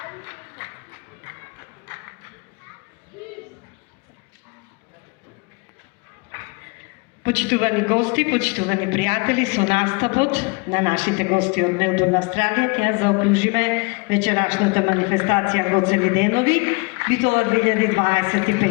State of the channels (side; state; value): right; quieter; 30.1 dB